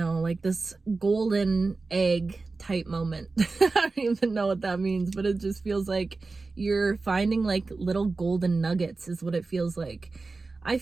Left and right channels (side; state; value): left; quieter; 3.8 dB